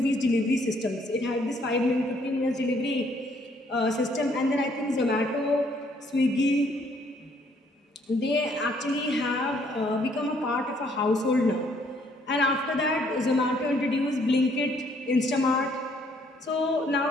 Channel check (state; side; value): normal; both; correlation 0.66